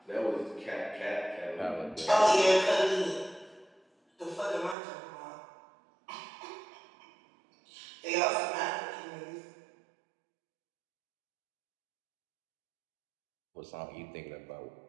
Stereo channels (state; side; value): drops out; left; at 4.8 s